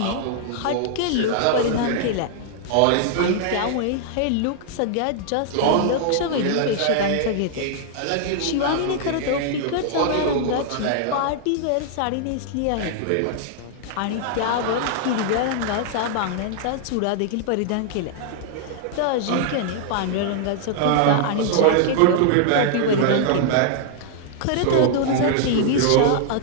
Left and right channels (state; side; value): different; both; correlation -0.01